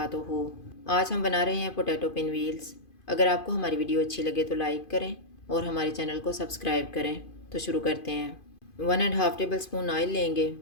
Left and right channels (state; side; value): late; right; 2.5 ms